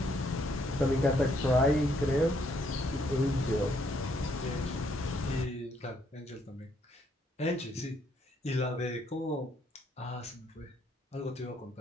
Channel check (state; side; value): normal; both; correlation 0.71